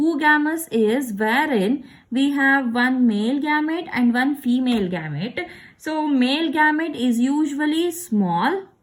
is wherein we have one male gamete and one female gamete. So male gamete is usually small.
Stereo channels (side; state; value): both; identical; correlation 1.00